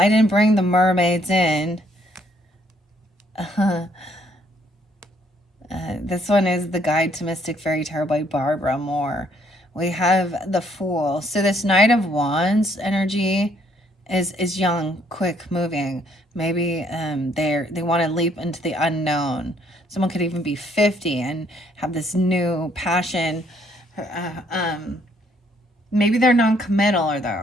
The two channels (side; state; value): both; normal; correlation 0.67